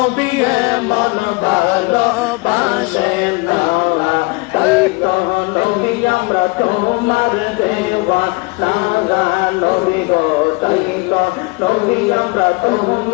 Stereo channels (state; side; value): quieter; right; 26.9 dB